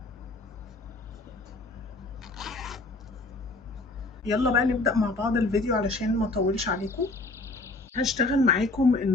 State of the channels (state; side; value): quieter; right; 3.2 dB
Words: يلا بقى نبدا مع بعض الفيديو علشان ما اطولش عليكم. هشتغل معاكم